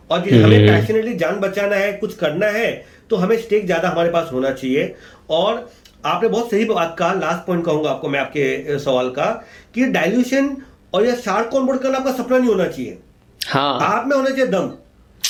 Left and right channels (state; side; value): identical; both; correlation 1.00